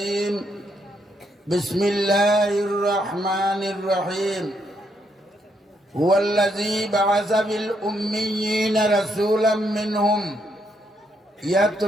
بسم الله الرحمن الرحيم. هو الذي بعث في الأميين رسولا منهم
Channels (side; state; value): both; normal; correlation 0.76